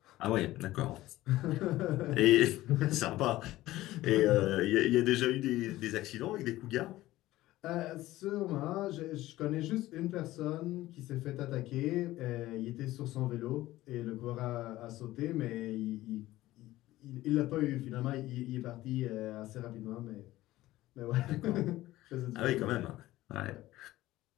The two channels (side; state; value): right; quieter; 16.5 dB